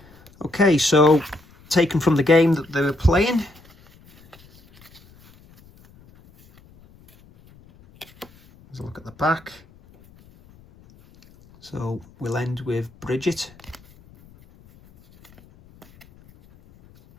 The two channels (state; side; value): noise; left; rumble, 27 dB below the sound